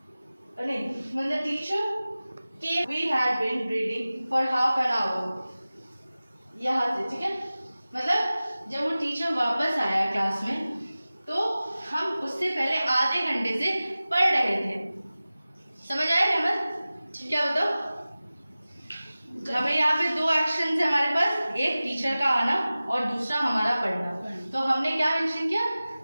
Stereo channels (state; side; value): inverted; both; correlation -0.97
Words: नहीं, when the teacher came we had been reading for half an hour, यहाँ से, ठीक है, मतलब जब वो टीचर वापस आया क्लास में तो हम उससे पहले आधे घंटे से पढ़ रहे थे। समझ आया रहमत, क्या बताओ, हमें यहाँ पे दो एक्शन है हमारे पास, एक टीचर का आना और दूसरा हमारा पढ़ना। तो हमने क्या मेंशन किया